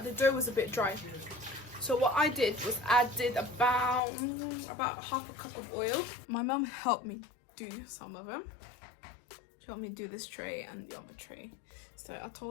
the dough was a bit dry. So what I did was added about half a cup of oil. My mum helped me do some of them. She helped me do this tray and the other tray. So I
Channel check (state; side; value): drops out; right; at 4.0 s